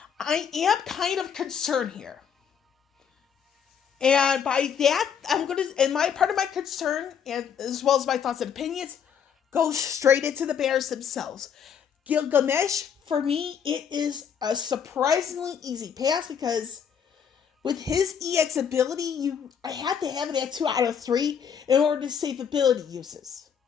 I am kind of concerned here. And by that, part of my concern, and as well as my thoughts and opinions, goes straight into the banners themselves. Gilgamesh, for me, it is a surprisingly easy pass, because with his EX ability, I have to have it at 2 out of 3 in order to save ability uses.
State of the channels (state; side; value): quieter; right; 7.6 dB